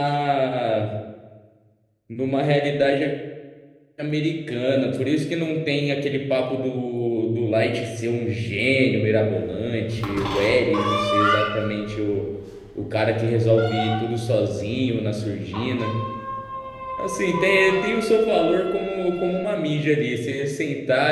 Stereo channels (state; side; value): identical; both; correlation 1.00